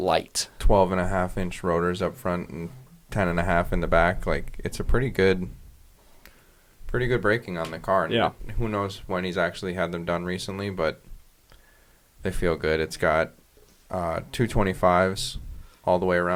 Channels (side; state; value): both; identical; correlation 1.00